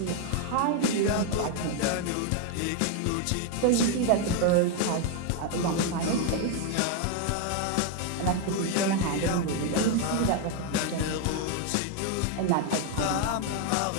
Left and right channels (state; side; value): different; both; correlation 0.01